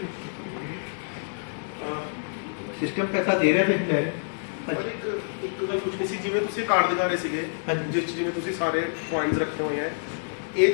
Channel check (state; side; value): silent; right; 60 dB below the other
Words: ਸਿਸਟਮ ਪੈਸਾ ਦੇ ਰਿਹਾ ਤੇ ਲੈ ਰਿਹਾ। ਇੱਕ ਗੱਲ ਪੁੱਛਣੀ ਸੀ, ਜਿਵੇਂ ਤੁਸੀਂ ਕਾਰਡ ਦਿਖਾ ਰਹੇ ਸੀਗੇ ਜਿਸ 'ਚ ਜਿਵੇਂ ਤੁਸੀਂ ਸਾਰੇ ਪੁਆਇੰਟਸ ਰੱਖੇ ਹੋਏ ਹੈ, ਇਹ